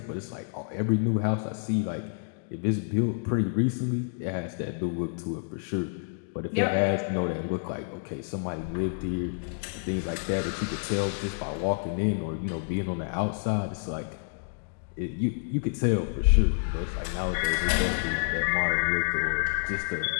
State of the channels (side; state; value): right; silent; digital silence